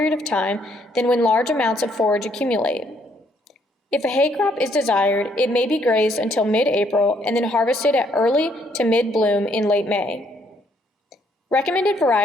of time than when large amounts of forage accumulate. If a hay crop is desired, it may be grazed until mid-April and then harvested at early to mid-bloom in late May. Recommended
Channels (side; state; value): both; normal; correlation 0.69